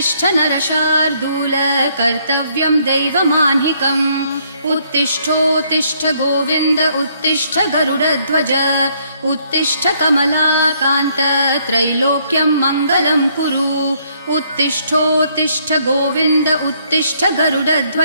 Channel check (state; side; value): inverted; both; correlation -0.68